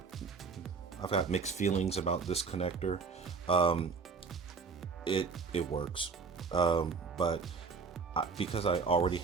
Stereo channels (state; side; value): quieter; left; 5.0 dB